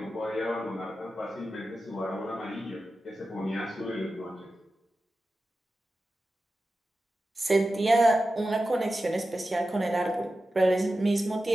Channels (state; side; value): normal; both; correlation 0.93